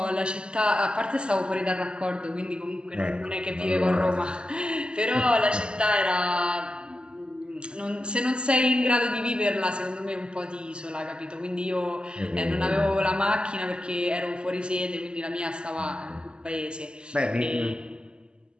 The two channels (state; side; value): late; left; 0.050 ms